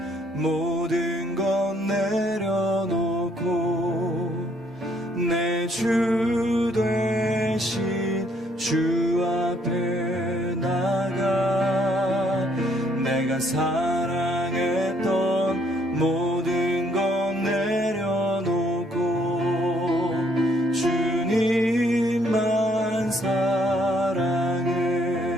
모든 것 내려놓고 내 주 되신 주 앞에 나가 내가 사랑했던 모든 것 내려놓고 주님만 사랑해.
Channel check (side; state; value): both; normal; correlation 0.67